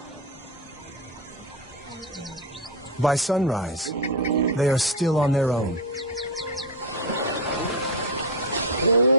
By sunrise, they are still on their own.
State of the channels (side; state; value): both; normal; correlation 0.11